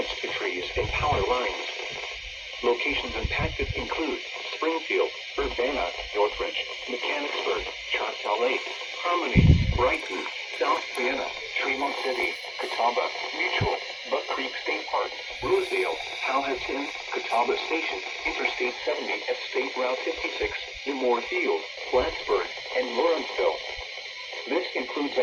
to trees and power lines. Locations impacted include Springfield, Urbana, Northridge, Mechanicsburg, Choctaw Lake, Harmony, Brighton, South Vienna, Tremont City, Catawba, Mutual, Buck Creek State Park, Rosedale, Powhatan, Catawba Station, Interstate 70 at State Route 56, Moore Field, Plattsburgh, and Lawrenceville. This includes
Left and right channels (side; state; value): both; identical; correlation 1.00